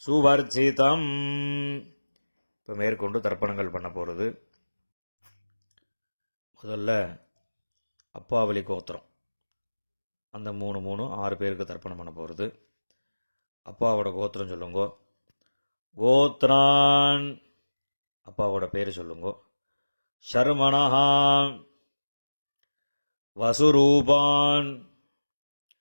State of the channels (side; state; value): both; inverted; correlation -1.00